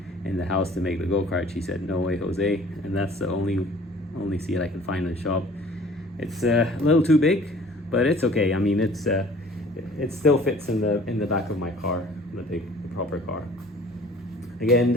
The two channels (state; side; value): normal; both; correlation 0.50